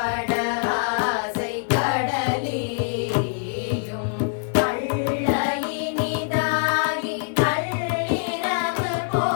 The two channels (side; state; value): right; silent; digital silence